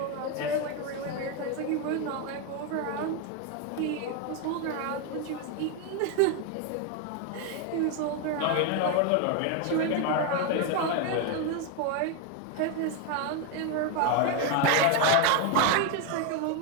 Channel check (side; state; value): both; different; correlation 0.02